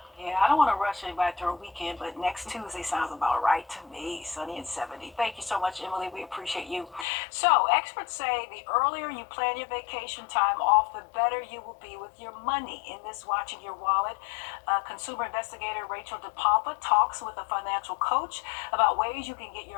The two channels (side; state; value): right; drops out; at 7.1 s